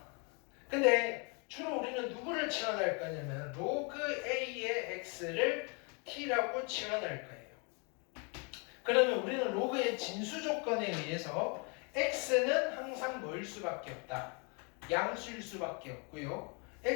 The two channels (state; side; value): quieter; right; 34.3 dB